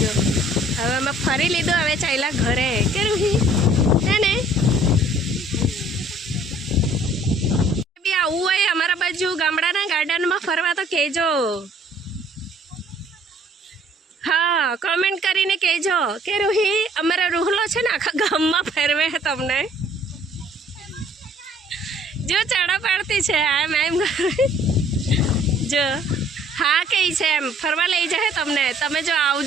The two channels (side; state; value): both; normal; correlation 0.58